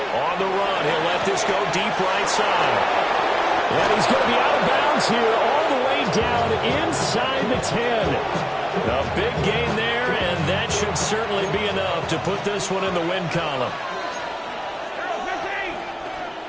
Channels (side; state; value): both; identical; correlation 1.00